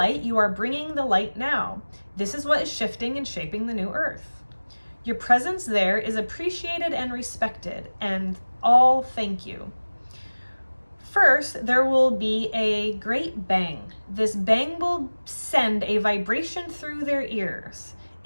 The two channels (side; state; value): both; inverted; correlation -1.00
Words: You are bringing the light now. This is what is shifting and shaping the new earth. Your presence there is appreciated and respected, and all thank you. First, there will be a great bang. This bang will send a vibration through their ears.